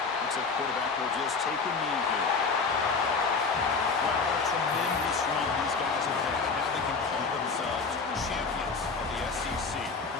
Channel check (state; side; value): quieter; right; 4.7 dB